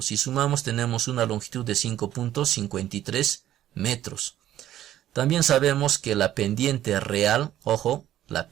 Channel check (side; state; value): left; quieter; 12.5 dB